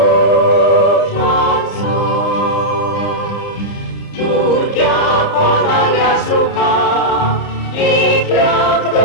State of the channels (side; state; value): right; late; 30 ms